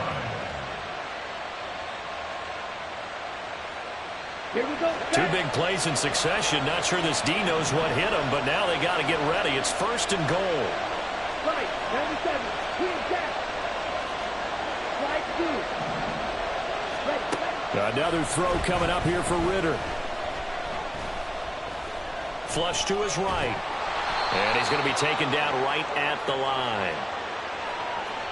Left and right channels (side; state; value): both; identical; correlation 1.00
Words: Here we go. 2 big plays in succession. Not sure this D knows what hit him, but now they got to get ready. It's 1st and goal. Right, 97. Clear back. Right through. Another throw coming up here for Ritter. Flush to his right. And he's going to be taken down right at the line.